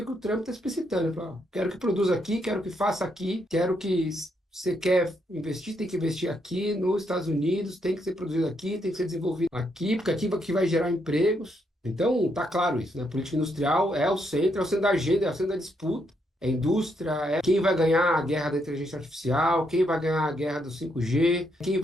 que o Trump está explicitando. Ele fala, quero que produza aqui, quero que faça aqui, quero que você quer investir, tem que investir aqui nos Estados Unidos, tem que ser produzido aqui, tem que ser desenvolvido aqui, porque aqui que vai gerar empregos. Então, tá claro isso, né? A política industrial é o centro da agenda, é o centro da disputa. É a indústria, é quem vai ganhar a guerra da inteligência artificial, quem vai ganhar a guerra do 5G, quem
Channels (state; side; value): normal; both; correlation 0.77